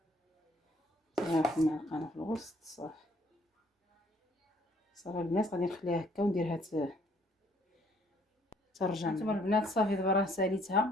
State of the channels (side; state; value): both; normal; correlation 0.63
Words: واحد المعلقه في الوسط. صافي البنات غادي نخليها هكا ونديرها ترجع. نتوما البنات صافي دابا راه